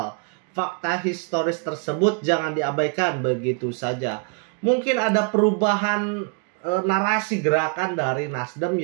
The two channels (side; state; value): left; quieter; 35.3 dB